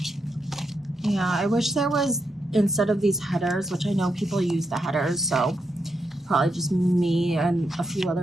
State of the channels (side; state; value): both; normal; correlation 0.82